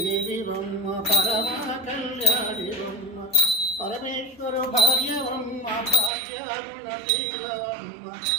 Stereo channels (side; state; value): left; drops out; at 6.1 s